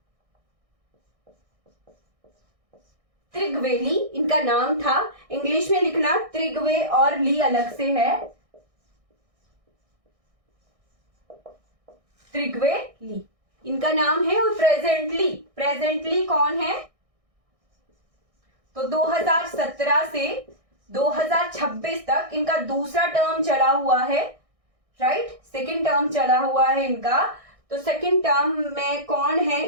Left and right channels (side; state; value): left; late; 1.6 ms